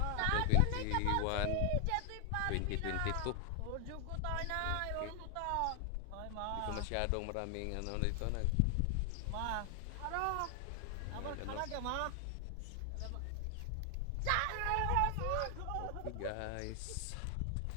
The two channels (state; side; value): different; both; correlation 0.00